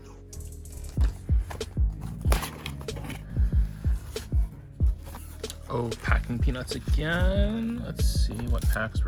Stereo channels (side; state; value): both; identical; correlation 1.00